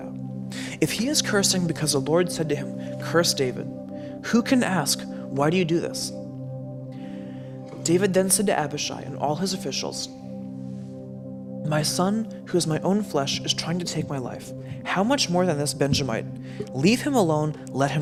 If he is cursing because the Lord said to him, 'Curse David,' who can ask, 'Why do you do this?'" David then said to Abishai and all his officials, "My son, who is my own flesh, is trying to take my life. How much more than this Benjamite? Leave him alone, let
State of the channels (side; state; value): both; identical; correlation 1.00